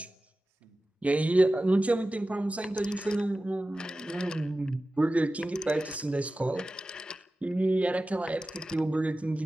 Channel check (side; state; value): both; normal; correlation 0.95